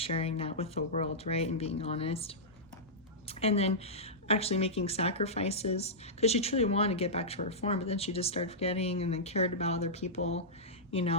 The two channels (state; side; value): normal; both; correlation -0.13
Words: that with the world, right? And being honest. And then actually making sacrifices because she truly wanted to get back to her form, but then she just started forgetting and then cared about other people, you